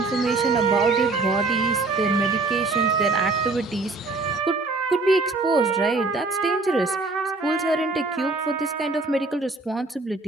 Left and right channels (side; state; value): left; quieter; 3.5 dB